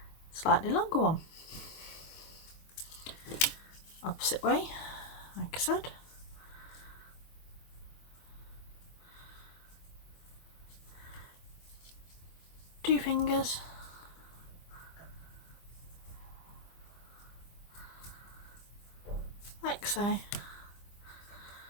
Slightly longer one, opposite way, like I said. Two fingers, like so.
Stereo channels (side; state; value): right; late; 24 ms